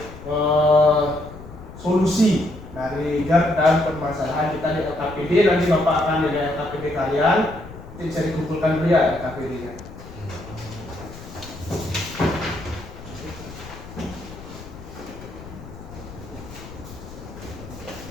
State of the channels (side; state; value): left; noise; rumble, 15 dB below the sound